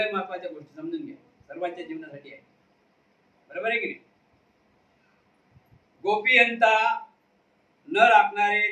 महत्वाच्या गोष्टी समजून घ्या, सर्वांच्या जीवनासाठी आहे. बरोबर आहे की नाही? गोपीयंता न राखणारे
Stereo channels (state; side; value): identical; both; correlation 1.00